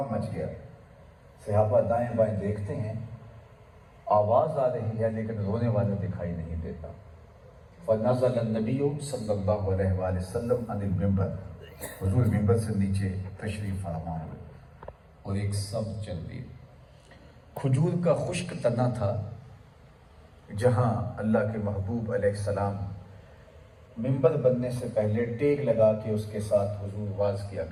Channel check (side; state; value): both; identical; correlation 1.00